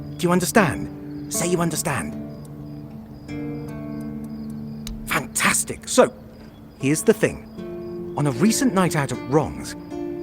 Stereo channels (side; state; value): both; identical; correlation 1.00